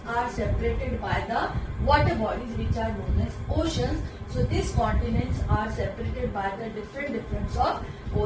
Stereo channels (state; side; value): identical; both; correlation 1.00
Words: are separated by the water bodies which are known as oceans. So these continents are separated by the different of